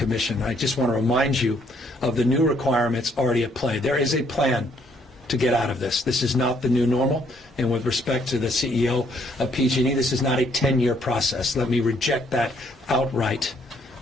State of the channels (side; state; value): both; normal; correlation 0.68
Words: I just want to remind you of the new requirements already at play. There is a plan to get out of this. This is not the new normal. And with respect to the CEO of PG&E, this is not a 10-year process. Let me reject that outright,